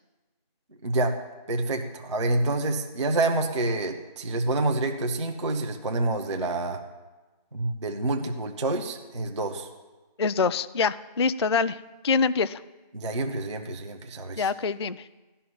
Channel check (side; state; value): both; inverted; correlation -0.33